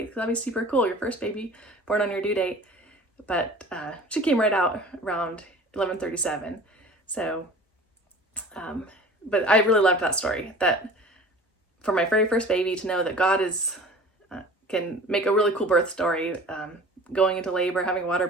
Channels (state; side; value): normal; both; correlation 0.42